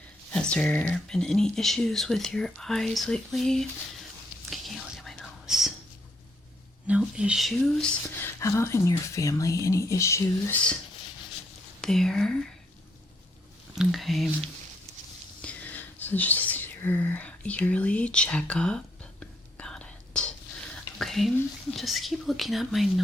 Has there been any issues with your eyes lately? Okay, can you look at my nose? No issues? How about in your family? Any issues there? Okay. So just your yearly checkup. Got it. Okay, just keep looking at my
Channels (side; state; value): both; normal; correlation 0.72